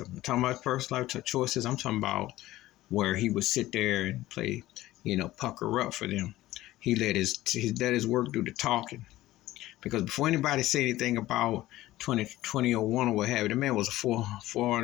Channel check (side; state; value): right; quieter; 16.1 dB